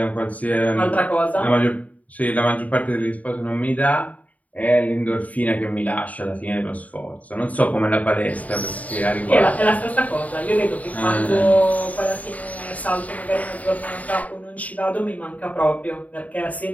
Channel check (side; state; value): right; late; 0.071 ms